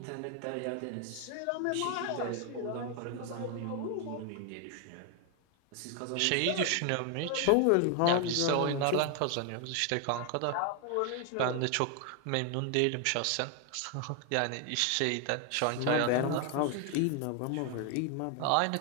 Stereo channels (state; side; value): different; both; correlation 0.01